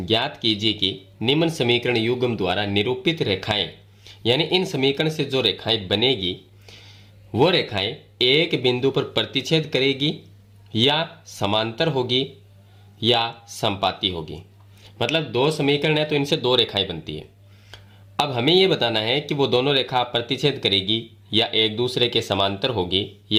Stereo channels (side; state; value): both; identical; correlation 1.00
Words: कीजिए कि निम्न समीकरण युग्म द्वारा निरूपित रेखाएं, यानी इन समीकरण से जो रेखाएं बनेगी वो रेखाएं एक बिंदु पर प्रतिच्छेद करेगी या समांतर होगी या संपाती होगी। मतलब दो समीकरण है तो इनसे दो रेखाएं बनती है। अब हमें यह बताना है कि वो दोनों रेखा प्रतिच्छेद करेगी या एक दूसरे के समांतर होगी